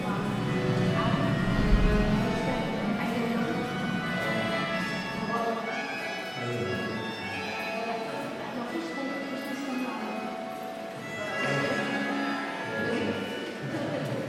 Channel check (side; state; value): both; identical; correlation 1.00